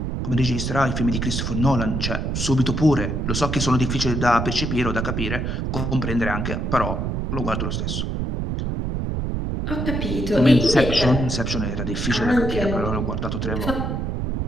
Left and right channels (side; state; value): right; noise; rumble, 1 dB below the sound